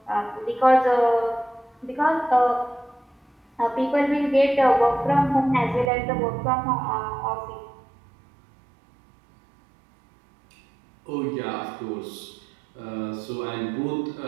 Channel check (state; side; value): drops out; left; at 5.9 s